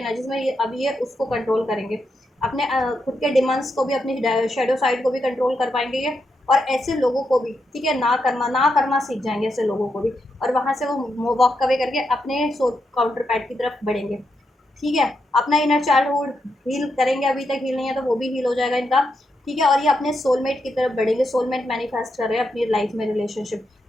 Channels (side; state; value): both; normal; correlation 0.83